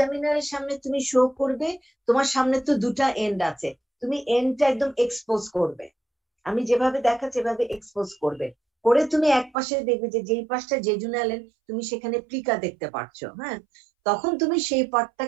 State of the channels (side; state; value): left; drops out; at 9.6 s